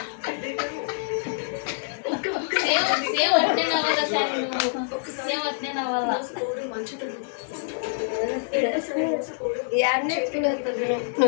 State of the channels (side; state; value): right; silent; digital silence